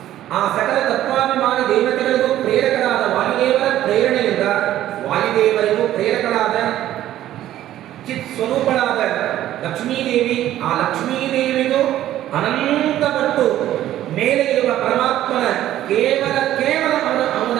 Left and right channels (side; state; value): left; quieter; 13.0 dB